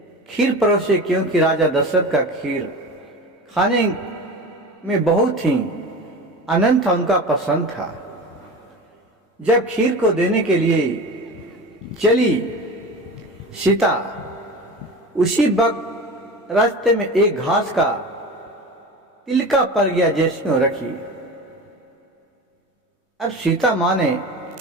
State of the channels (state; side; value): normal; both; correlation 0.31